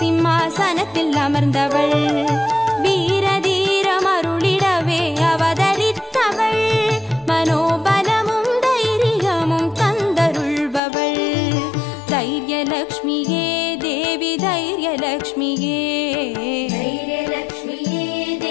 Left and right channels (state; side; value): drops out; right; at 10.8 s